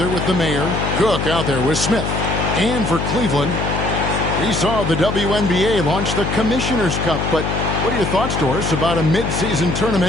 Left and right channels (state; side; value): noise; left; hum, 2 dB below the sound